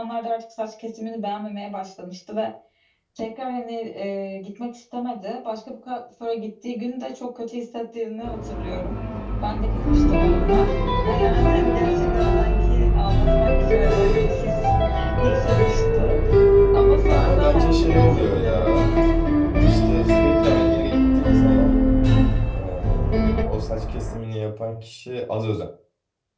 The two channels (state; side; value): identical; both; correlation 1.00